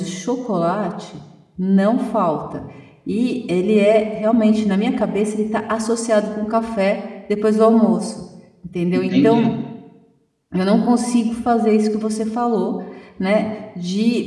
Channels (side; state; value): both; identical; correlation 1.00